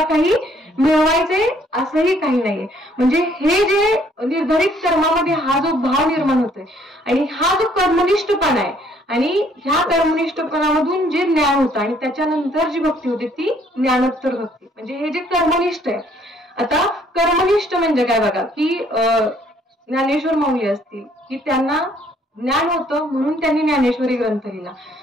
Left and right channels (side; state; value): both; normal; correlation 0.63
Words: काही मिळवायचे असंही काही नाहीये. म्हणजे हे जे निर्धारित कर्मामध्ये हा जो भाव निर्माण होतोय आणि हा जो कर्मनिष्ठपणा आहे आणि ह्या कर्मनिष्ठपणामधून जे ज्ञान होतं आणि त्याच्यानंतर जी भक्ती होते ती ज्ञानोत्तर भक्ती. म्हणजे हे जे कर्मनिष्ठ आहे आता कर्मनिष्ठ म्हणजे काय बघा, की ज्ञानेश्वर माऊली असतील की त्यांना ज्ञान होतं म्हणून त्यांनी ज्ञानेश्वरी ग्रंथ लिहिला.